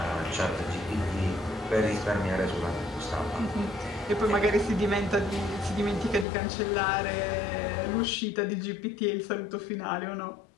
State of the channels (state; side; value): drops out; right; at 6.2 s